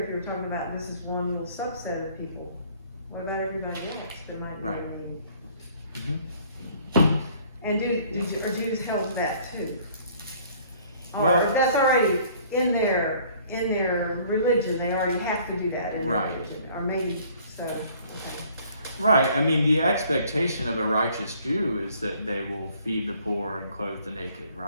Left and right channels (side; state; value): both; inverted; correlation -0.57